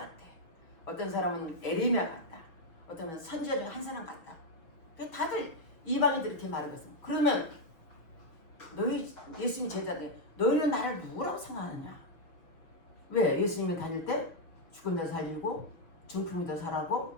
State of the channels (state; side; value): late; right; 6.0 ms